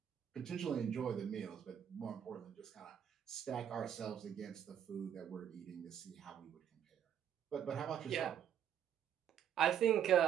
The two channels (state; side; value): quieter; left; 9.2 dB